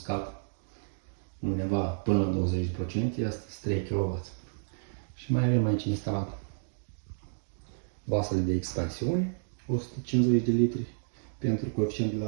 undeva până la 20%, este 3 kW. Și mai avem aici instalat vasele de expansiune, 150 de litri pentru coeficient de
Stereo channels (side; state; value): left; silent; digital silence